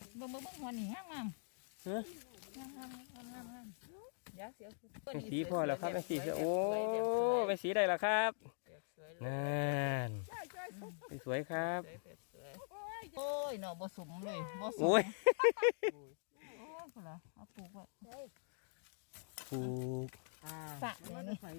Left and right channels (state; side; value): silent; right; digital silence